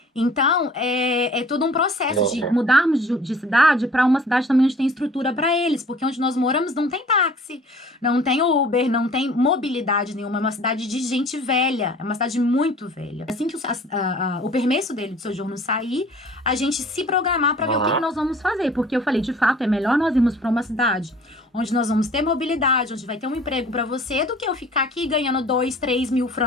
Então, é todo um processo de mudarmos de cidade para uma cidade também onde tem estrutura para eles, porque onde nós moramos não tem táxi, não tem Uber, não tem mobilidade nenhuma, é uma cidade de gente velha, é uma cidade muito velha. Assim que o permesso dele de sojourno sair, a gente se programar para ver o que nós vamos fazer, porque eu falei, de fato, é melhor nós irmos para uma cidade onde nós vamos ter mobilidade, onde vai ter um emprego para você, do que eu ficar aqui ganhando 2, 3 mil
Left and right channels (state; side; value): normal; both; correlation 0.49